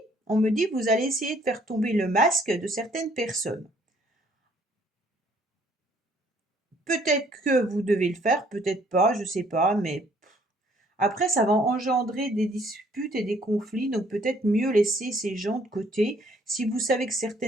on me dit vous allez essayer de faire tomber le masque de certaines personnes. Peut-être que vous devez le faire, peut-être pas, je sais pas, mais après ça va engendrer des disputes et des conflits, donc peut-être mieux laisser ces gens de côté. Si vous savez que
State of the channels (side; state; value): both; normal; correlation 0.62